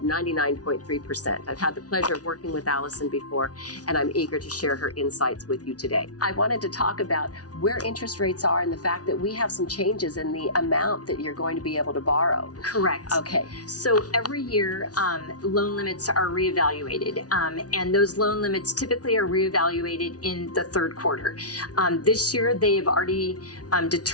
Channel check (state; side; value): late; right; 0.68 ms